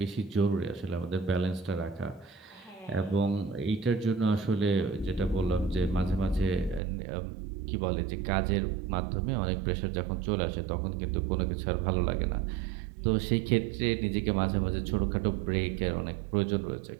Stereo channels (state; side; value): drops out; left; at 6.8 s